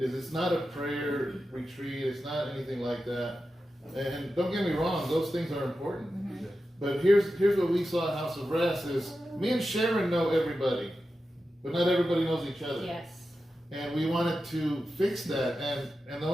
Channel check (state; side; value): normal; both; correlation 0.91